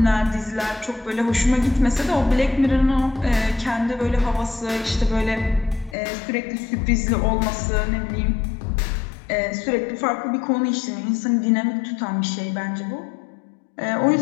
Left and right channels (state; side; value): drops out; right; at 6.0 s